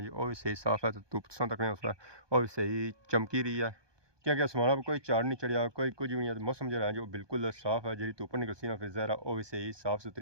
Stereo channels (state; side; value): late; left; 1.2 ms